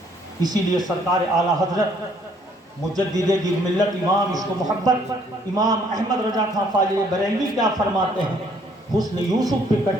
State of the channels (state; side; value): normal; both; correlation 0.64